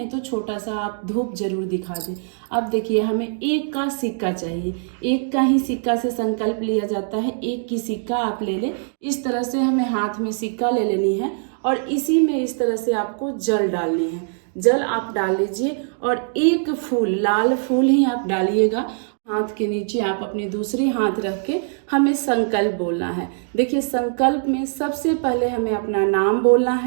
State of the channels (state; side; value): silent; left; digital silence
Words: तो छोटा सा आप धूप जरूर दिखा दें। अब देखिए, हमें 1 का सिक्का चाहिए। 1 का ही सिक्का से संकल्प लिया जाता है। 1 की सिक्का आप ले लें। इस तरह से हमें हाथ में सिक्का ले लेनी है और इसी में इस तरह से आपको जल डालनी है। जल आप डाल लीजिए और 1 फूल, लाल फूल ही आप डालिएगा। हाथ के नीचे आप अपनी दूसरी हाथ रख के हमें संकल्प बोलना है। देखिए, संकल्प में सबसे पहले हमें अपना नाम बोलना